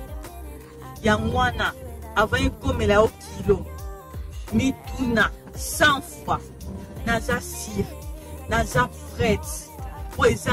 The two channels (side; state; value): both; identical; correlation 1.00